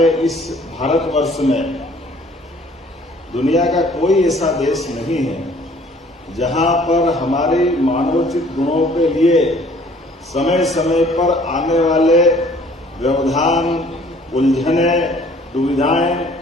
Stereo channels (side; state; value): both; normal; correlation 0.56